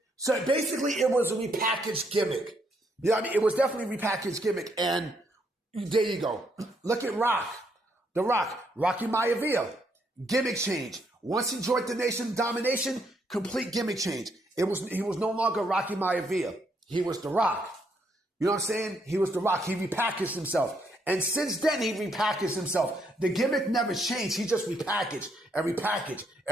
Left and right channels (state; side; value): normal; both; correlation 0.74